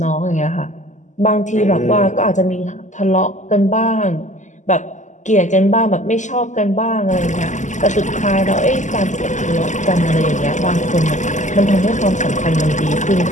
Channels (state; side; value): late; right; 0.35 ms